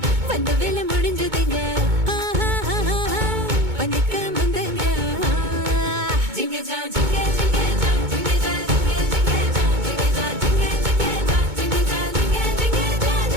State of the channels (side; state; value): left; late; 2.2 ms